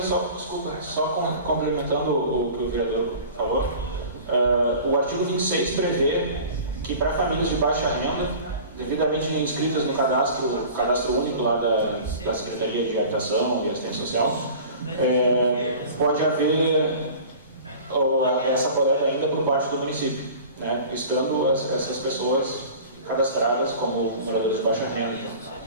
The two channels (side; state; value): both; inverted; correlation -0.41